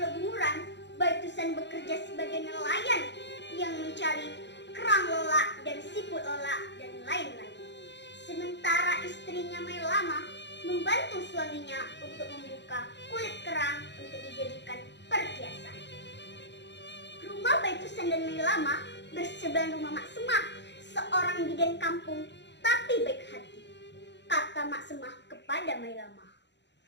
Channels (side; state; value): right; late; 0.51 ms